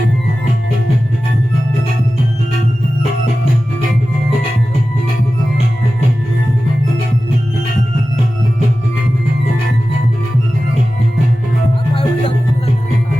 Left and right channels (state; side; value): normal; both; correlation 0.95